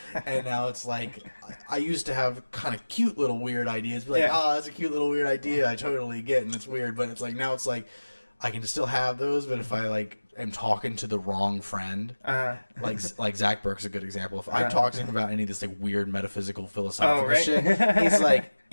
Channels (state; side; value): inverted; both; correlation -1.00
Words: And now it's like, I used to have kind of cute little weird ideas, be like, oh, that's a cute little weird idea, I totally get, and it's weird, but it's like, now it's like, I can still have those, but if I like am talking to the wrong friend, like Zach Burke's a good example. If I talk to him about any of this like weird metaphysical philosophical shit, he's like,